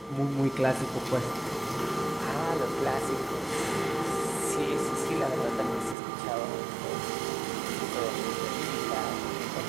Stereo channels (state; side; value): drops out; left; at 6.0 s